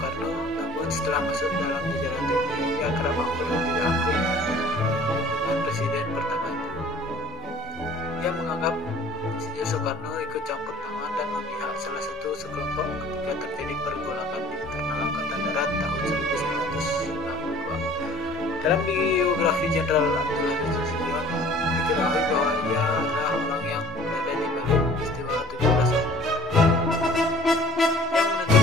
namun setelah masuk dalam jajaran TNI ia kerap akur dan tidak akur dengan presiden pertama itu. Ia menganggap Insinyur Soekarno ikut campur tangan dan memihak salah satu sekelompok ketika terjadi pergolakan di internal Angkatan Darat tahun 1962. Dalam biografi Jenderal Abdul Haris Nasution diketahui bahwa ia adalah orang yang berada di balik peristiwa 17 Oktober yang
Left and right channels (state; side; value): normal; both; correlation 0.49